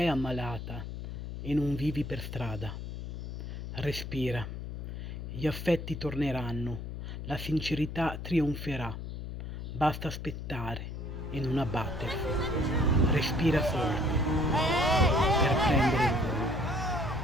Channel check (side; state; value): left; noise; hum, 7 dB below the sound